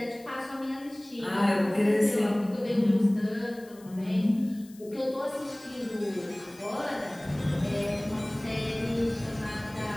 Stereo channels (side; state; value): left; noise; hiss, 24 dB below the sound